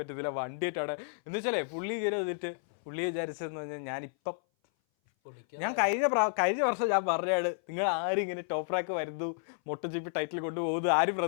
പറ്റത്തില്ല, വണ്ടിയായിട്ട് എന്ന് വെച്ചാലേ പുള്ളി കയറി വന്നിട്ട് പുള്ളി വിചാരിച്ചതെന്ന് പറഞ്ഞാൽ ഞാനിപ്പം ഞാൻ കഴിഞ്ഞ വർഷം ഞാൻ പറഞ്ഞാണ്, നിങ്ങൾ ആരും ഇങ്ങനെ ടോപ്പ് റാക്ക് വരുന്നു MotoGP ടൈറ്റിൽ കൊണ്ടുപോകുന്നു ആരും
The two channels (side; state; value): right; silent; 57 dB below the other